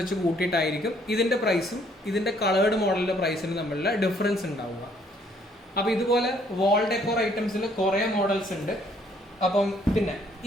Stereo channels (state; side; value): normal; both; correlation 0.65